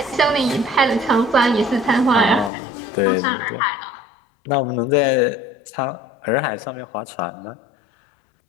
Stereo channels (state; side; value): drops out; right; at 2.5 s